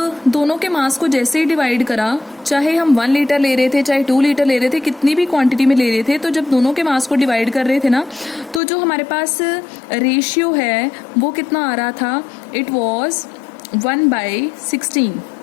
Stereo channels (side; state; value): right; drops out; at 8.6 s